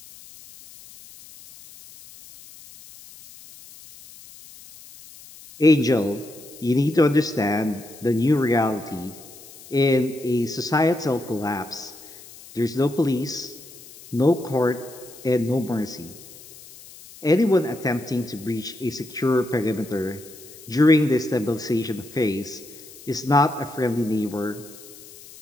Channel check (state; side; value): noise; left; hiss, 19 dB below the sound